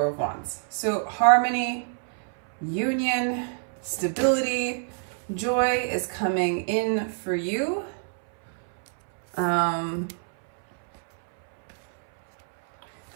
of Wands. So harmony, union, stability, joy is coming in for you.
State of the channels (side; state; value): left; silent; 61 dB below the other